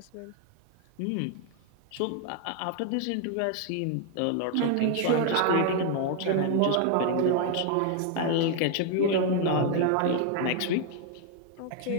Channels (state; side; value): different; both; correlation 0.00